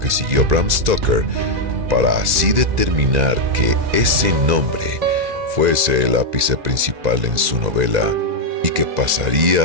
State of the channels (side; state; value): left; late; 2.0 ms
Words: siguió Bram Stoker para así determinar que ese nombre fuese el ápice principal en su novela y que